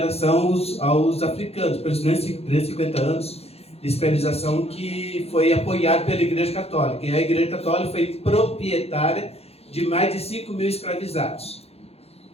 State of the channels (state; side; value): late; right; 0.29 ms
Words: aos africanos, pelos 350 anos de escravização que foi apoiado pela Igreja Católica. E a Igreja Católica foi proprietária de mais de 5 mil escravizados.